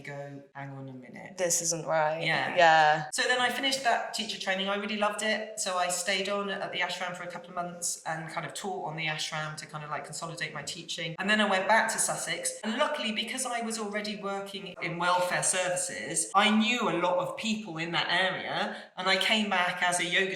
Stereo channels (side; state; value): both; identical; correlation 1.00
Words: go, hang on a minute. This isn't right. Yeah. So then I finished that teacher training. I really loved it. So I stayed on at the ashram for a couple of months and kind of taught on the ashram to kind of like consolidate my teaching. And then I went back to Sussex. And luckily, because I was already working in welfare services, I knew a lot of people in that area. And I came back as a yoga